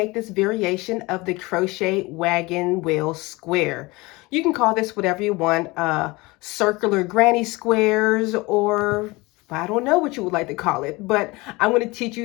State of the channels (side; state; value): right; quieter; 23.1 dB